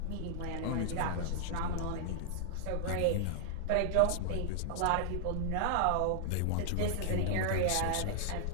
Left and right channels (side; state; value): both; different; correlation -0.01